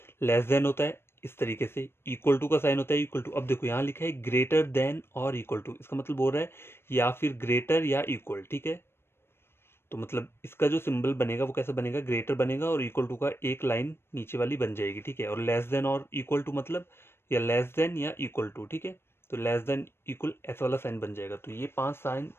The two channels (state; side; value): late; right; 0.12 ms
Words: लेस देन होता है इस तरीके से, इक्वल टू का साइन होता है इक्वल टू। अब देखो यहाँ लिखा है ग्रेटर देन और इक्वल टू, इसका मतलब बोल रहा है या फिर ग्रेटर या इक्वल। ठीक है, तो मतलब इसका जो सिंबल बनेगा वो कैसा बनेगा, ग्रेटर बनेगा और इक्वल टू का एक लाइन नीचे वाली बन जाएगी। ठीक है, और लेस देन और इक्वल टू मतलब या लेस देन या इक्वल टू। ठीक है, तो लेस देन इक्वल ऐसा वाला साइन बन जाएगा। तो ये 5 साइन